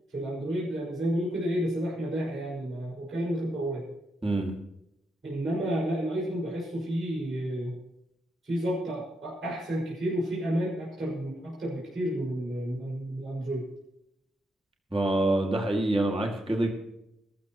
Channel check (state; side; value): normal; both; correlation 0.81